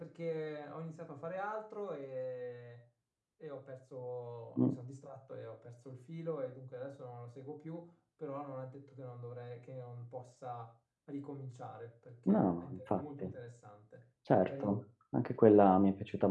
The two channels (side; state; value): both; identical; correlation 1.00